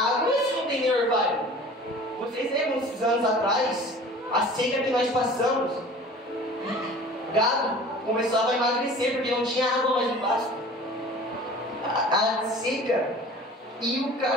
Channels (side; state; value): both; normal; correlation 0.43